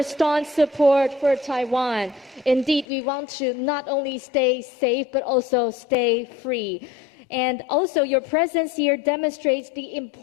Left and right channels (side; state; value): right; drops out; at 2.9 s